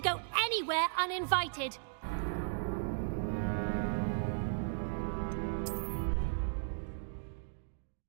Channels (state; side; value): silent; left; digital silence